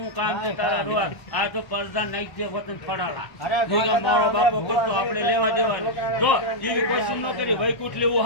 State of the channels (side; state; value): right; late; 1.0 ms